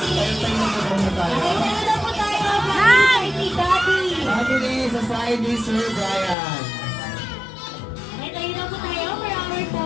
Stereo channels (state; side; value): drops out; right; at 6.4 s